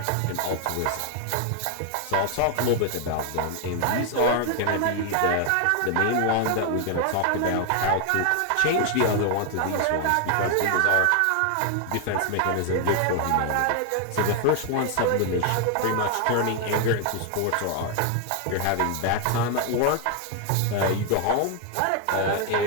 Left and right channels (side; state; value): both; different; correlation 0.00